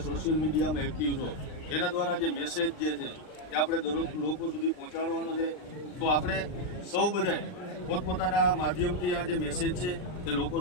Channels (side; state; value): right; late; 39 ms